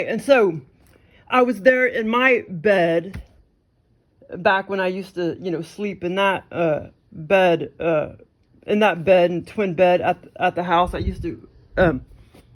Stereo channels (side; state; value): both; identical; correlation 1.00